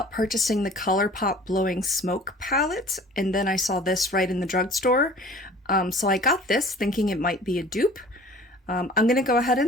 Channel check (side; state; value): both; normal; correlation 0.47